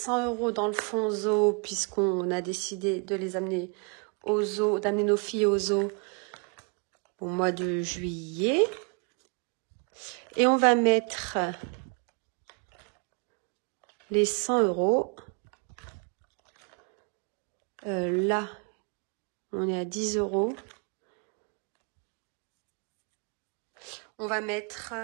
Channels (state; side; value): quieter; left; 37.4 dB